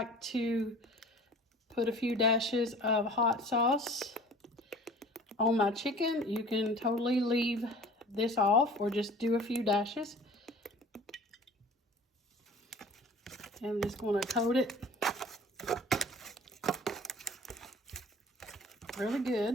to put a few dashes of hot sauce on my chicken. You can totally leave this off or just do a few dashes. And I'm just going to coat it really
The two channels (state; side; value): normal; both; correlation 0.45